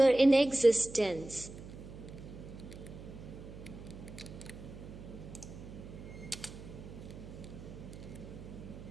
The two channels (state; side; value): noise; right; hum, 13 dB below the sound